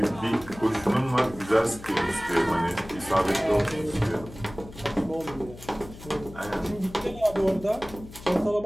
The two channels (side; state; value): left; noise; hum, 16 dB below the sound